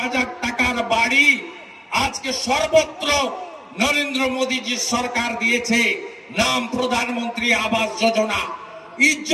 টাকার বাড়ি আজকে সর্বত্র নরেন্দ্র মোদীজির সরকার দিয়েছে। নাম প্রধানমন্ত্রী আবাস যোজনা।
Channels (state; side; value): identical; both; correlation 1.00